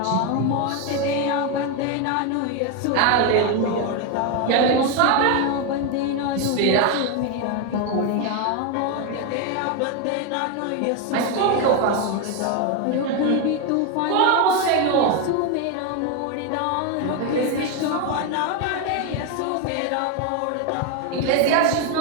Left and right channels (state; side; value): different; both; correlation 0.02